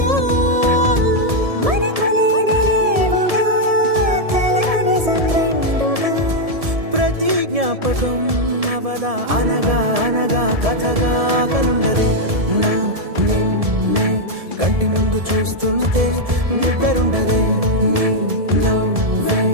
మనకులేనిరేవుగా కలని సంరెండుగా ప్రతి జ్ఞాపకం అవదా అనగా అనగా కథగా కలుండదే నా నిన్నే కంటి ముందు చూస్తుంటే నిద్రుండదే నీ నవ్వే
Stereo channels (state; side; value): late; left; 1.7 ms